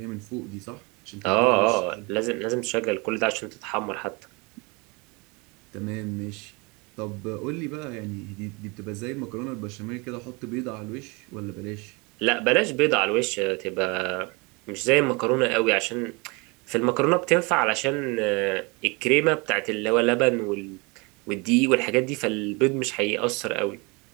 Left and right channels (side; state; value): left; quieter; 28.4 dB